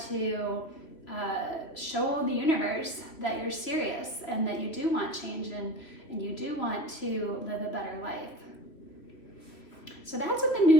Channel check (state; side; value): late; right; 3.1 ms